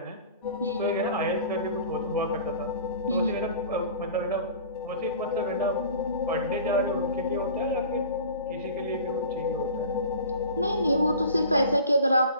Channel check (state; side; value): inverted; both; correlation -0.41